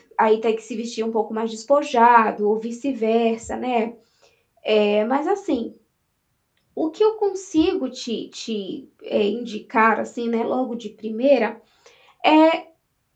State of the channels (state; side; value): identical; both; correlation 1.00